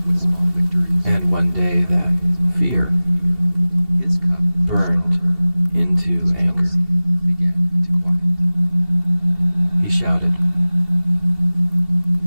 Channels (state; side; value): late; left; 2.7 ms